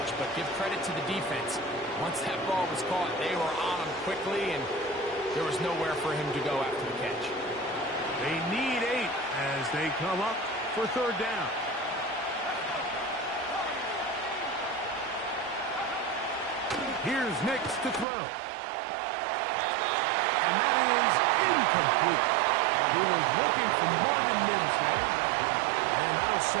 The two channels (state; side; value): drops out; left; at 18.1 s